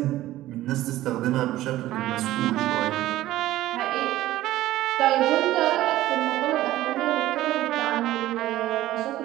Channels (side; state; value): left; quieter; 15.2 dB